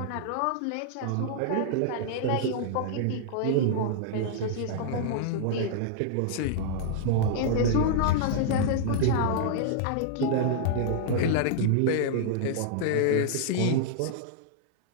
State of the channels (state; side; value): different; both; correlation -0.01